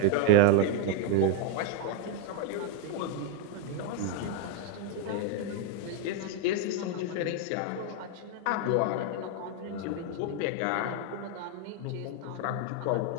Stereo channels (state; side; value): different; both; correlation 0.01